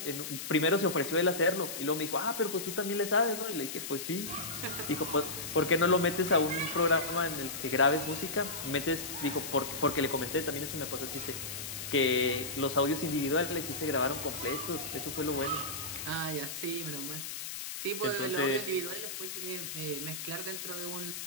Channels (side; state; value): left; noise; hiss, 7 dB below the sound